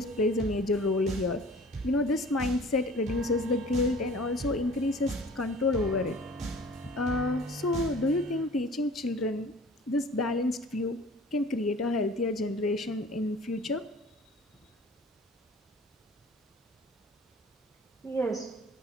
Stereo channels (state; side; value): normal; both; correlation 0.46